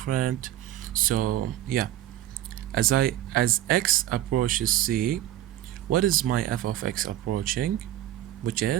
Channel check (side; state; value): left; quieter; 13.3 dB